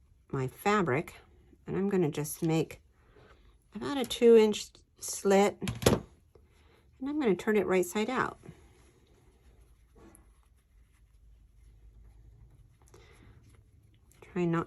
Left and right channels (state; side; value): identical; both; correlation 1.00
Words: fabric. And I'm going to just make about a 2-inch slit, and I'm going to turn it right side out. Try